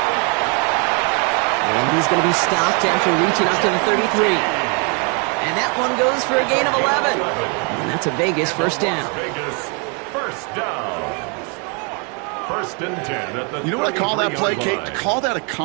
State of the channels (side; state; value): left; quieter; 35.4 dB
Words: And he's going to be stopped after reaching up to the 33. And that one goes for a gain of 11. And that's a Vegas first down. Vegas first down. 1st and 10 at the You know what I call that play, Kate? I call that a